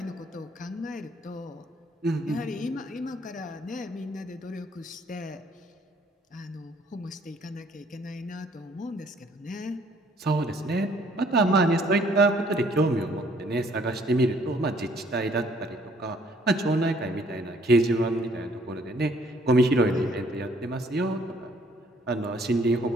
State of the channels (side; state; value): both; normal; correlation 0.62